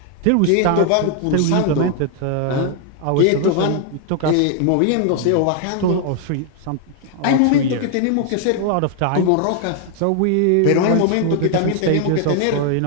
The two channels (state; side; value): different; both; correlation 0.00